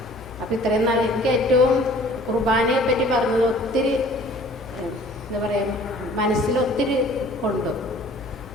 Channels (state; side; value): noise; left; hum, 19 dB below the sound